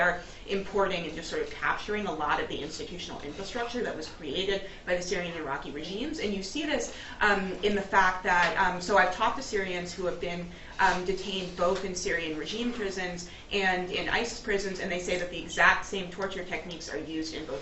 importing and just sort of capturing a lot of the institutional infrastructure that was created by the Syrian and Iraqi regimes. And you see this in the fact that, so I've talked to Syrians who have been detained both in Syrian regime prisons and in ISIS prisons, and they say that the exact same torture techniques are used in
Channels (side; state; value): both; identical; correlation 1.00